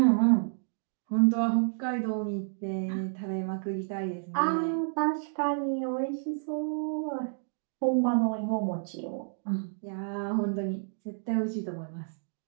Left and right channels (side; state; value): left; silent; digital silence